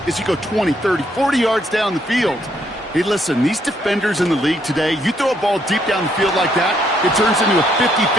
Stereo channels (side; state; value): both; normal; correlation 0.72